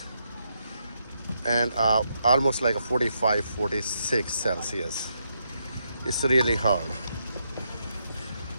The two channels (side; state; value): both; inverted; correlation -0.80